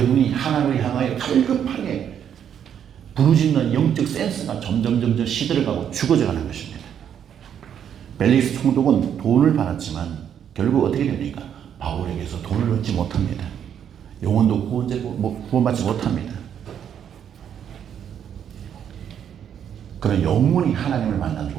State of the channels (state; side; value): quieter; left; 8.9 dB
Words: 하나님을 향하여 갈급하게 부르짖는 영적 센스가 점점 시들어가고 죽어져가는 것입니다. 벨릭스 총독은 돈을 받았지만 결국 어떻게 됩니까? 바울에게서 돈을 얻지 못합니다. 영혼도 구원받지 못합니다. 그런 영원히 하나님을 만나지